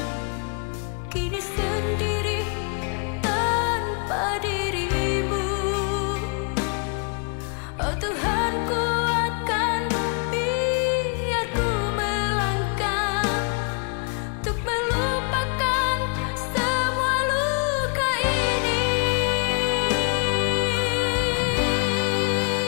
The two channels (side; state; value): right; quieter; 39.4 dB